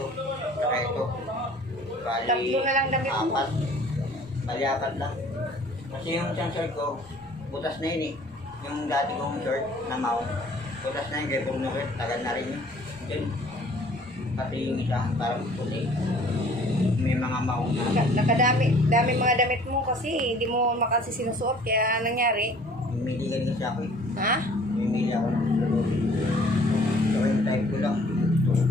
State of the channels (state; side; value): normal; both; correlation 0.53